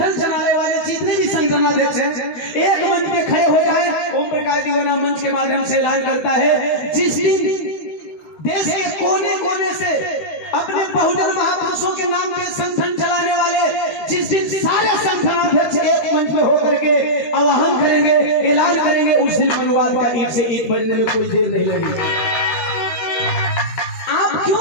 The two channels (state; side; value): late; right; 13 ms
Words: चलाने वाले जितने भी संगठनाध्यक्ष हैं एक मंच पे खड़े हो जाए। ओम प्रकाश दीवाना मंच के माध्यम से ऐलान करता है, जिस दिन देश के कोने कोने से अपने बहुजन महापुरुषों के नाम पे संगठन चलाने वाले, जिस दिन सारे संगठनाध्यक्ष एक मंच में होकर के आह्वान करेंगे, ऐलान करेंगे, उस दिन मनुवाद का ईंट से ईंट बजने में कोई देर नहीं लगेगी। आप